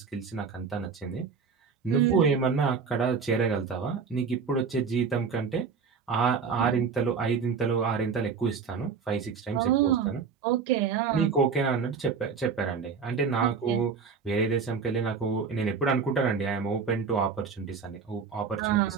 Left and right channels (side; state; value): left; quieter; 5.6 dB